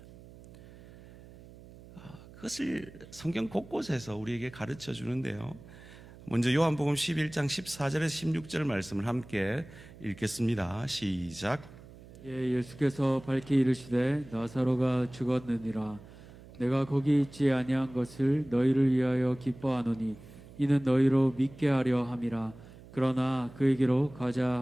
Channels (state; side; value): noise; right; hum, 19 dB below the sound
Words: 그것을 성경 곳곳에서 우리에게 가르쳐 주는데요. 먼저 요한복음 11장 14절에서 16절 말씀을 함께 읽겠습니다. 시작. 예수께서 밝히 이르시되 나사로가 죽었느니라. 내가 거기 있지 아니한 것을 너희를 위하여 기뻐하노니 이는 너희로 믿게 하려 함이라. 그러나 그에게로 가자